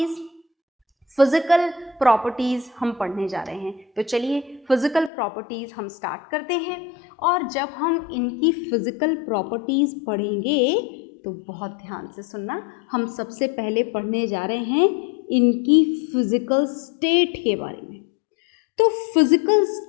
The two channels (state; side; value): drops out; right; at 5.1 s